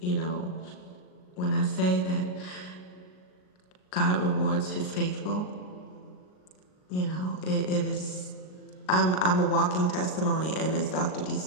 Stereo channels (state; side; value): late; right; 38 ms